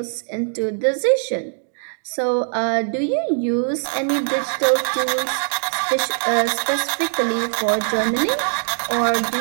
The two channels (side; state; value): left; silent; digital silence